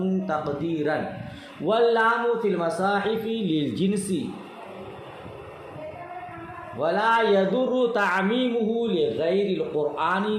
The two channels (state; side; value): identical; both; correlation 1.00